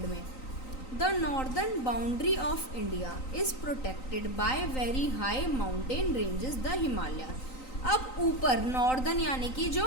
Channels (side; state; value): right; late; 3.9 ms